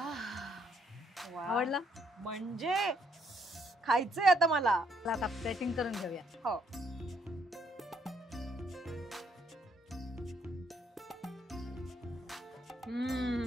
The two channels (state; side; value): normal; both; correlation 0.70